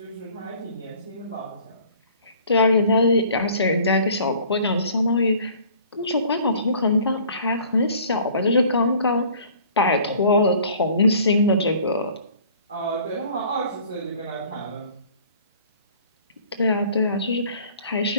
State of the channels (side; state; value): both; inverted; correlation -0.51